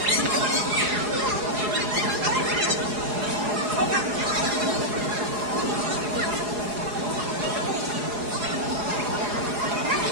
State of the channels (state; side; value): late; left; 4.8 ms